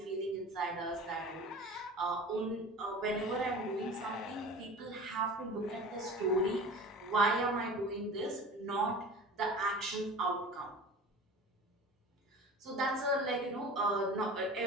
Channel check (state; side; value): normal; both; correlation 0.38